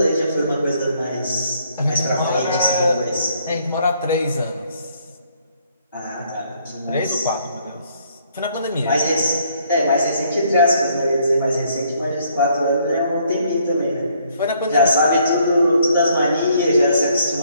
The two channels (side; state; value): both; inverted; correlation -0.67